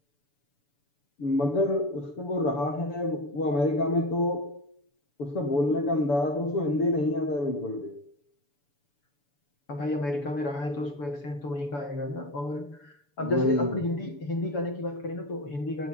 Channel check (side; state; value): right; late; 7.0 ms